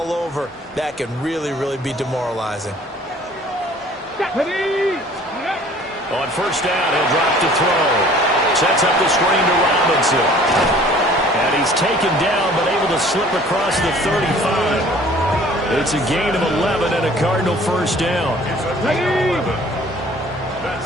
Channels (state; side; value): normal; both; correlation 0.52